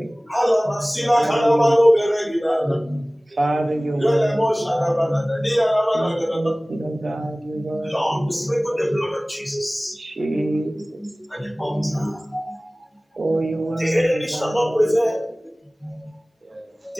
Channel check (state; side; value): normal; both; correlation 0.98